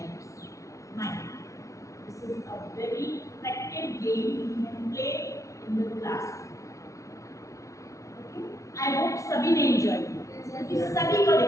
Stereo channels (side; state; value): right; late; 0.15 ms